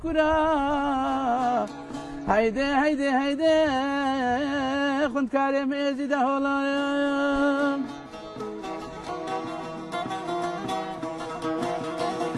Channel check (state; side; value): identical; both; correlation 1.00